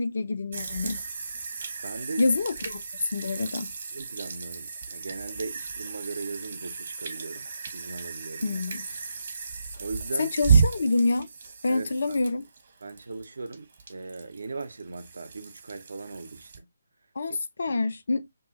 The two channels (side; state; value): both; inverted; correlation -0.85